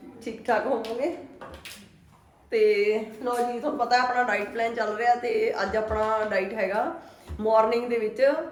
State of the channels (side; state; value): both; identical; correlation 1.00